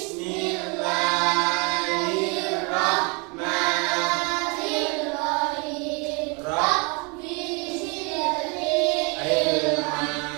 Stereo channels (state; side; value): quieter; left; 31.6 dB